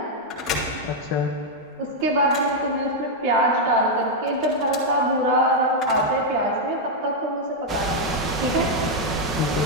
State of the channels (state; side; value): normal; both; correlation -0.01